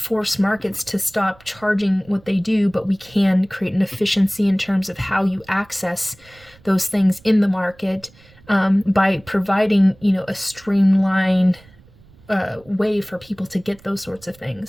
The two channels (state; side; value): noise; right; rumble, 27 dB below the sound